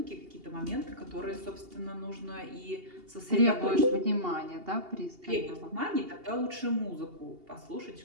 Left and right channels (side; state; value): left; late; 2.8 ms